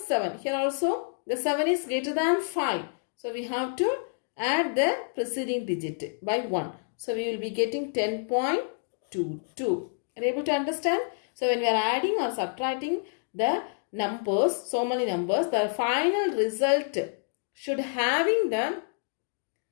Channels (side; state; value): right; silent; digital silence